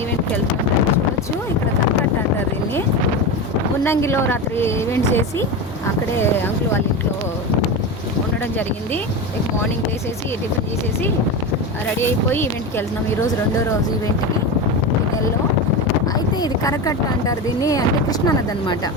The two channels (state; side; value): normal; both; correlation 0.21